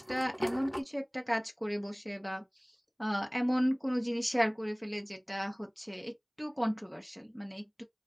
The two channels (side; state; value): both; identical; correlation 1.00